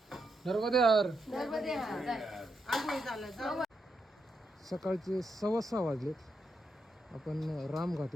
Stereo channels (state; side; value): normal; both; correlation 0.82